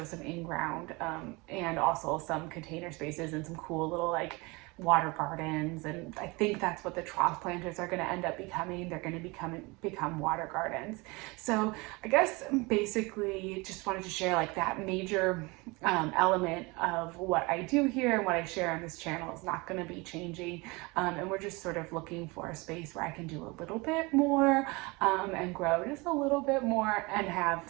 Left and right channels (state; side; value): quieter; left; 25.5 dB